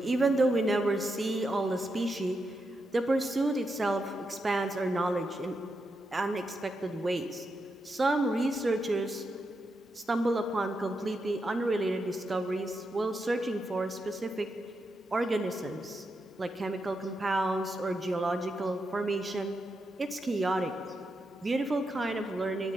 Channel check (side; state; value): both; normal; correlation 0.85